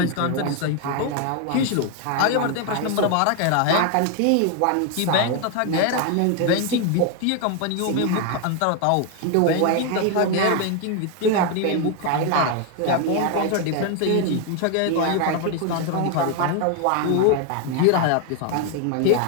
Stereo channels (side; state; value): both; different; correlation 0.01